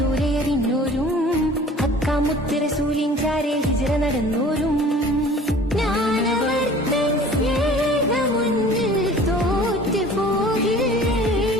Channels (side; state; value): both; normal; correlation 0.47